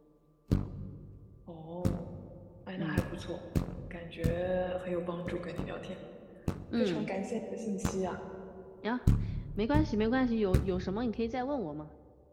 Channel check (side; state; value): both; identical; correlation 1.00